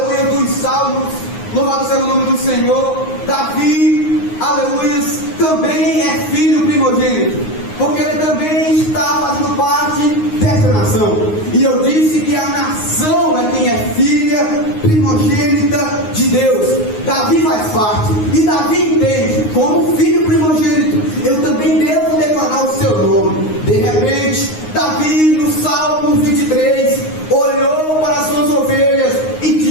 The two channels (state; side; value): late; right; 9.6 ms